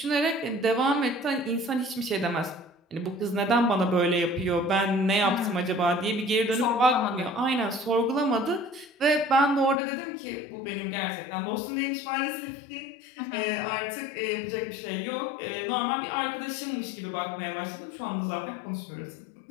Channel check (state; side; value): drops out; right; at 9.8 s